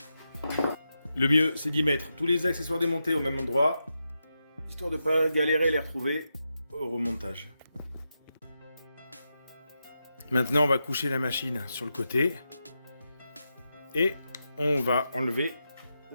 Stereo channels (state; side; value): inverted; both; correlation -0.87